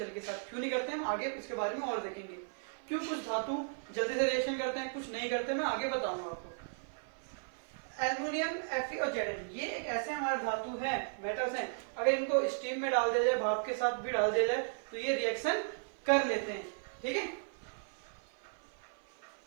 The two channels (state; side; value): silent; left; 54 dB below the other